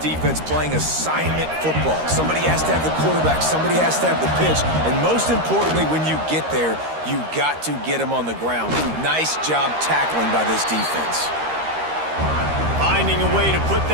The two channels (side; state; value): left; late; 13 ms